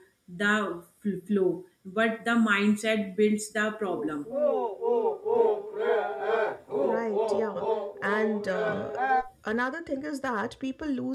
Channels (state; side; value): identical; both; correlation 1.00